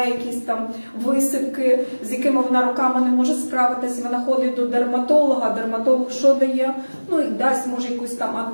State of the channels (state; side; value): inverted; both; correlation -1.00